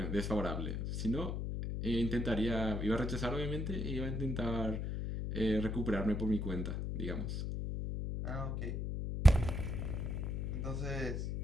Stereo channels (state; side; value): noise; left; hum, 2 dB below the sound